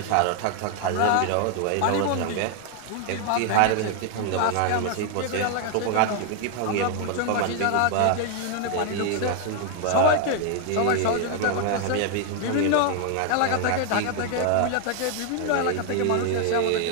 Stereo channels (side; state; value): both; different; correlation 0.00